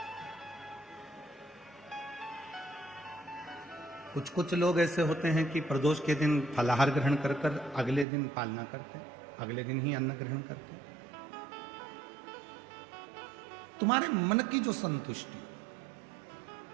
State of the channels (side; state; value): left; drops out; at 8.1 s